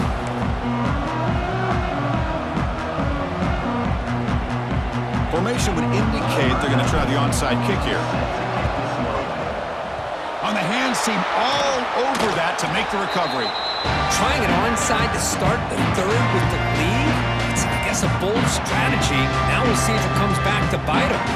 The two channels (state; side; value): identical; both; correlation 1.00